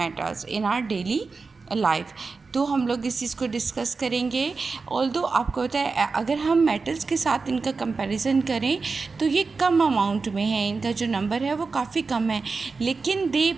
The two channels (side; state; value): left; quieter; 4.4 dB